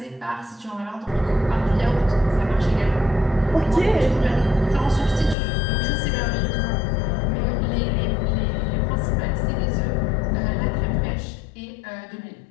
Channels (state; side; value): drops out; right; at 5.4 s